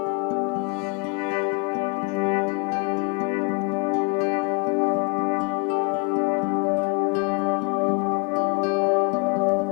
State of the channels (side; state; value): right; quieter; 30.4 dB